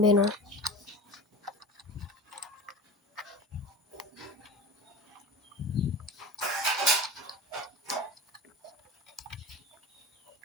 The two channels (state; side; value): normal; both; correlation 0.33